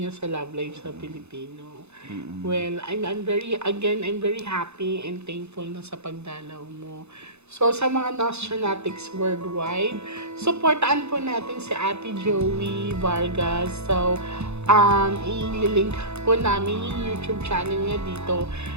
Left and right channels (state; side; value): late; left; 0.81 ms